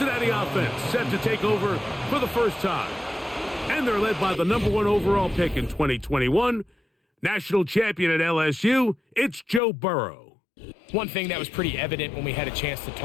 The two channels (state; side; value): drops out; right; at 9.6 s